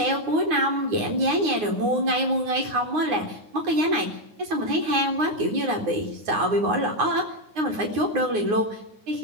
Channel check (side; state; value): left; late; 9.5 ms